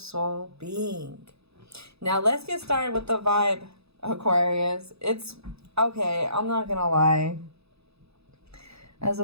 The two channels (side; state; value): left; late; 0.79 ms